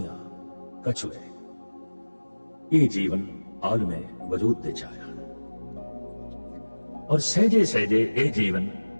कछुए। ये जीवन आल में वजूद दे आया, और सहजे सहजे ये जीवन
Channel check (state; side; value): inverted; both; correlation -1.00